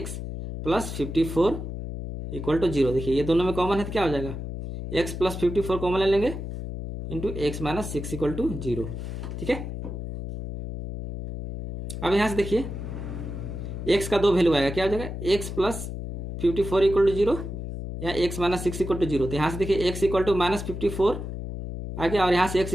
प्लस 54 इक्वल टू 0। देखिए ये दोनों में कॉमन है तो क्या हो जाएगा एक्स प्लस 54 कॉमन ले लेंगे into x minus 6 equal to 0। ठीक है, अब यहाँ से देखिए एक्स का 2 वैल्यू आएगा, क्या हो जाएगा एक्स प्लस 54 इक्वल टू 0 या एक्स माइनस 6 इक्वल टू 0। तो यहाँ से देखिए एक्स इक्वल टू माइनस 54 आ गया और यहाँ से एक्स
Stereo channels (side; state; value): left; noise; hum, 7 dB below the sound